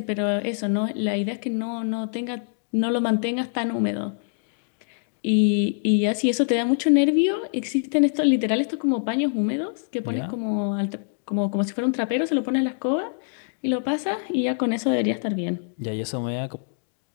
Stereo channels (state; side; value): silent; right; digital silence